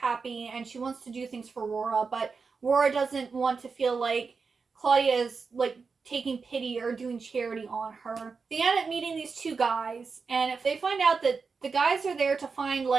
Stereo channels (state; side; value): quieter; left; 4.9 dB